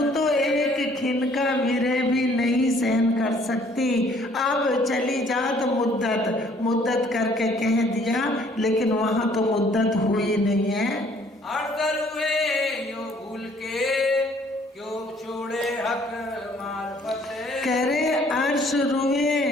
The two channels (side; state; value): both; normal; correlation 0.60